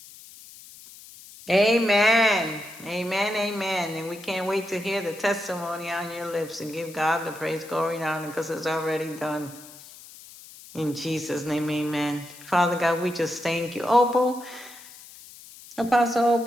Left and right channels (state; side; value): noise; left; hiss, 19 dB below the sound